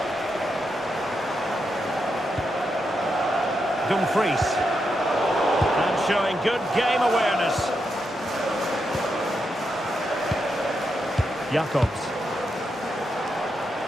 Dumfries. And showing good game awareness. Jacobs.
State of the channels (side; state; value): both; normal; correlation 0.84